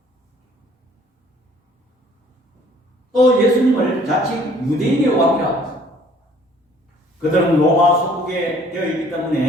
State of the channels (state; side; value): normal; both; correlation 0.56